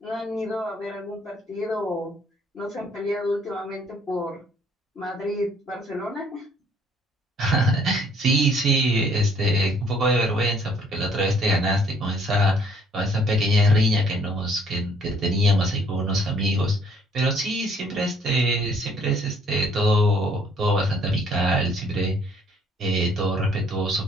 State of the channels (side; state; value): both; normal; correlation 0.61